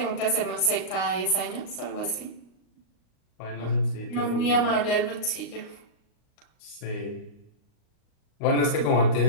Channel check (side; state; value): right; late; 38 ms